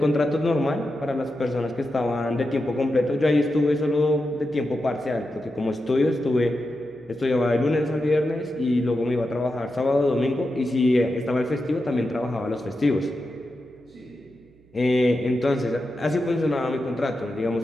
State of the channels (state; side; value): noise; right; hum, 29 dB below the sound